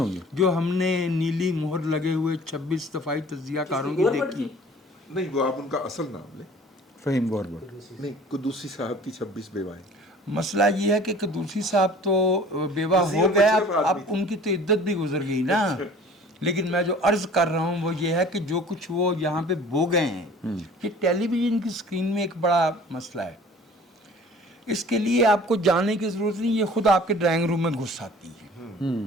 جو ہم نے نیلی مہر لگے ہوئے 26 دفاعی تجزیہ کاروں کی دیکھی. نہیں، وہ آپ ان کا اصل نام لیں. فہیم گوربٹ. نہیں، قدوسی صاحب کی 26 بیوائیں. مسئلہ یہ ہے کہ قدوسی صاحب تو بیوہ ہو گئے، اب ان کی تو عدت بھی گزر گئی نا. لیکن میں جو عرض کر رہا ہوں وہ یہ ہے کہ جو کچھ وہ یہاں پہ بو گئے ہیں، یہ ٹیلی ویژن کی اسکرین میں ایک بڑا مسئلہ ہے. اس کے لیے آپ کو جانے کی ضرورت نہیں، یہ خود آپ کے ڈرائنگ روم میں گھس آتی ہے.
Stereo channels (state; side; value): normal; both; correlation 0.48